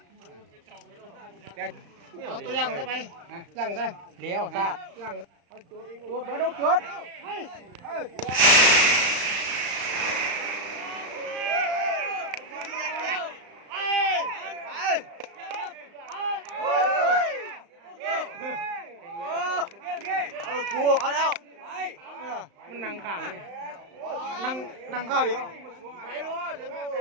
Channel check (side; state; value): left; late; 35 ms